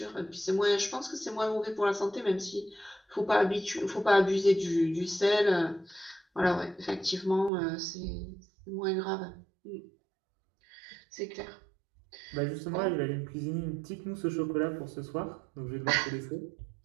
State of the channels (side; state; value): left; drops out; at 7.5 s